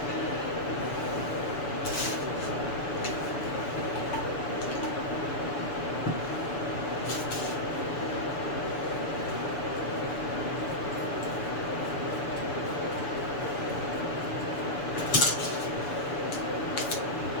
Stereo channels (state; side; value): late; right; 6.9 ms